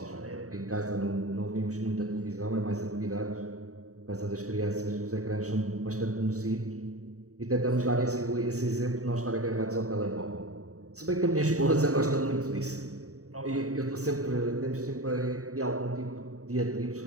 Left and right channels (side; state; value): left; late; 0.66 ms